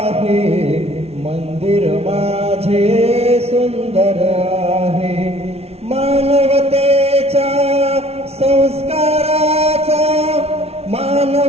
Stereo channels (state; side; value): late; left; 0.30 ms